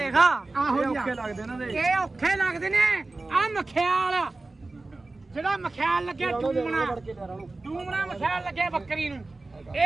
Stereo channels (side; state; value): left; quieter; 3.2 dB